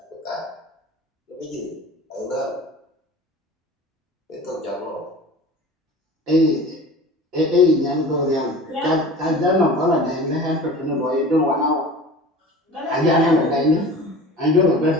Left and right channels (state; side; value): normal; both; correlation 0.38